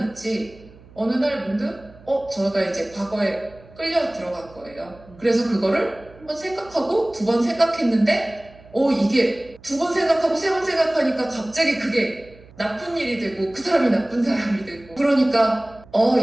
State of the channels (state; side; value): noise; right; hum, 23 dB below the sound